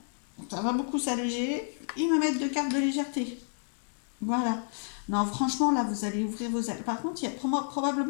ça va beaucoup s'alléger. Ils me mettent deux cartes de légèreté. Voilà. Non, franchement, là, vous allez ouvrir vos ailes. Par contre, il y a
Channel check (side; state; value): right; silent; 56 dB below the other